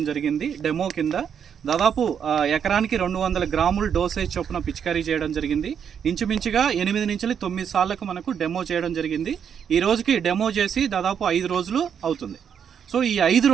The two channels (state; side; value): quieter; left; 7.8 dB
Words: జరిగింది. డెమో కింద దాదాపు ఎకరానికి 200 గ్రాములు డోసేజ్ చొప్పున పిచికారీ చేయడం జరిగింది. ఇంచుమించుగా 8 నుంచి 9 సార్లకు మనకు డెమో చేయడం జరిగింది. ఈ రోజుకి డెమో చేసి దాదాపు 5 రోజులు అవుతుంది. సో ఈ 5